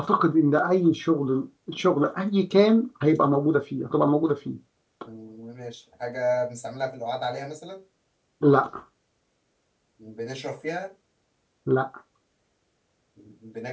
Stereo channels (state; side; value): identical; both; correlation 1.00